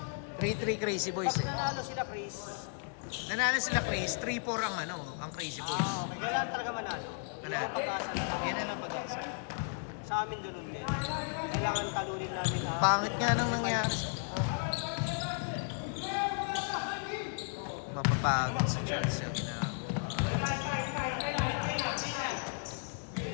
3-3 Crazy Boys eh. Ano sila, Chris? Nanalo sila Chris, 3-4 ang ano, ang Crazy Boys. Kailangan talaga manalo. Ano? Pag-asa na lang. Yan na lang pag-asa. Sa amin ganun din. Kailangan talunin namin. Pangit nga nang nangyari sa... Mapapagod si Charles sa ginagawa.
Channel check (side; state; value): right; silent; 55 dB below the other